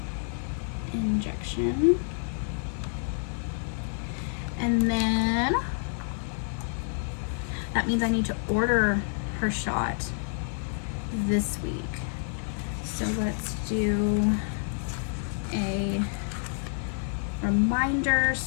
injection. And then that means I need to order her shot this week. So let's do a reminder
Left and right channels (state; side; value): silent; right; digital silence